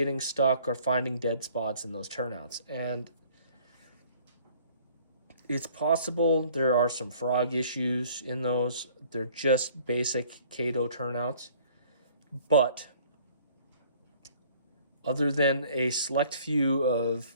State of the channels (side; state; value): both; inverted; correlation -0.55